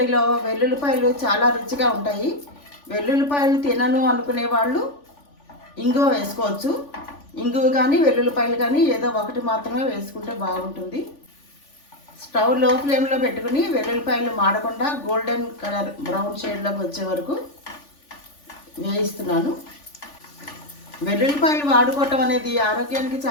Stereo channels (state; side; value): late; right; 3.4 ms